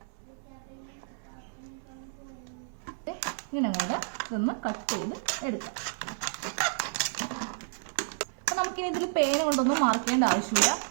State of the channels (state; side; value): silent; left; 57 dB below the other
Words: ഇങ്ങനെ അങ്ങോട്ട് ഇതൊന്ന് കട്ട് ചെയ്ത് എടുക്കാം. അപ്പൊ നമുക്കിനി ഇതിൽ പേന കൊണ്ടൊന്നും മാർക്ക് ചെയ്യേണ്ട